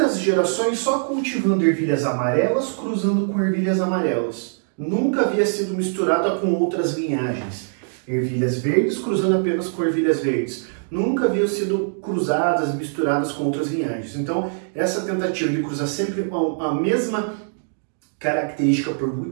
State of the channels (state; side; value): silent; left; digital silence